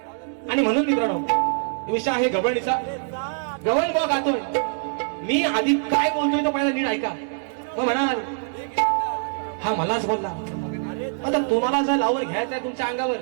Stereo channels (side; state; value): left; silent; digital silence